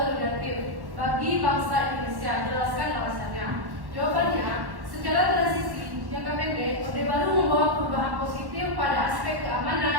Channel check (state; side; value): late; left; 1.1 ms